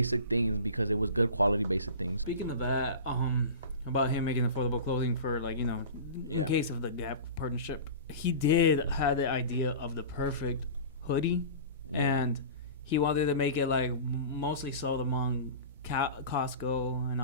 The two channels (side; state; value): both; inverted; correlation -0.34